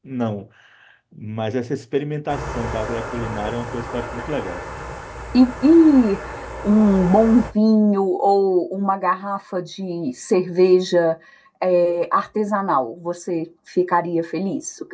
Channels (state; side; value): identical; both; correlation 1.00